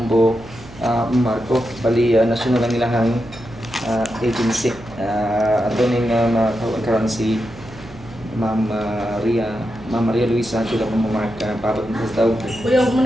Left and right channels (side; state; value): right; noise; hum, 19 dB below the sound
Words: Marco. Bali, national ang ilahang agency. Ato ning karon si Ma'am Maria Luisa Chula Bombo Marco para sa tawag. Kuya, huwag mo